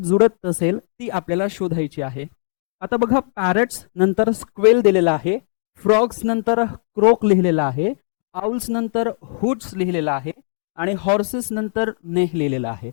असेल, ती आपल्याला शोधायची आहे. आता बघा पॅरट्स नंतर स्क्वेल दिलेला आहे, फ्रॉग्स नंतर क्रोक लिहिलेला आहे, आउल्स नंतर हुट्स लिहिलेला आहे आणि हॉर्सेस नंतर नेह लिहिलेला आहे.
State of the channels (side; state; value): right; silent; digital silence